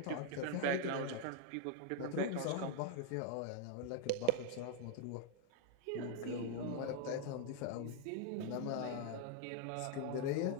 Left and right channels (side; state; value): both; different; correlation 0.00